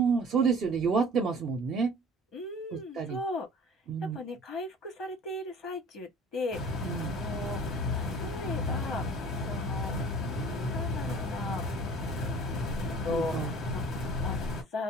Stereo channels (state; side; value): normal; both; correlation 0.46